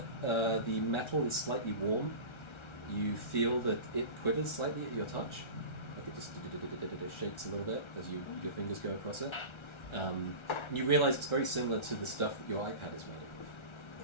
the metal is slightly warm. You feel that it quivers slightly at your touch. Like it just shakes a little bit as your fingers go across it. And you realise it's very similar to the stuff that your iPad is made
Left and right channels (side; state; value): right; late; 1.3 ms